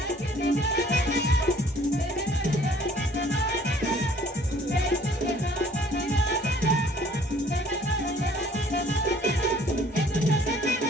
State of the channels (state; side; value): normal; both; correlation 0.56